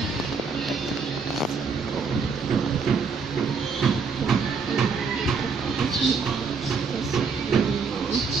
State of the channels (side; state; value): left; quieter; 5.1 dB